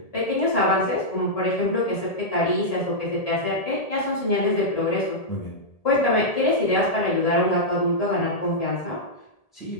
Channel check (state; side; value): late; right; 1.7 ms